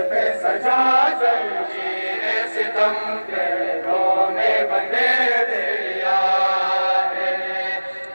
पे सजा जंजीर सितम के में बंधे दिया है,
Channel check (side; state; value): both; inverted; correlation -1.00